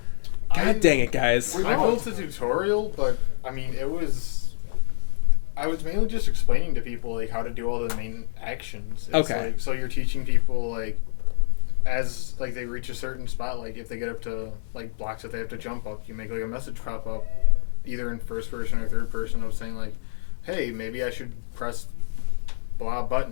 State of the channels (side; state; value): right; silent; digital silence